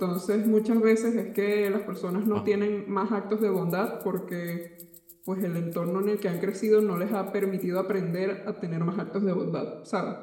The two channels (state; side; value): identical; both; correlation 1.00